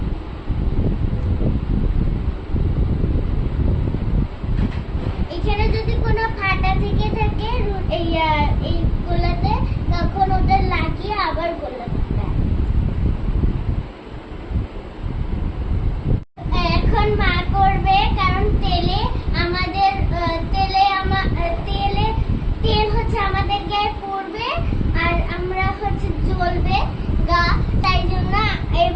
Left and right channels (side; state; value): both; identical; correlation 1.00